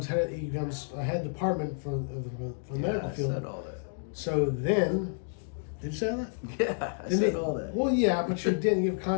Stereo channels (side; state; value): right; silent; digital silence